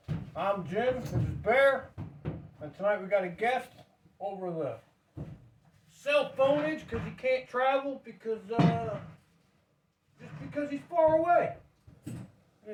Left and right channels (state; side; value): identical; both; correlation 1.00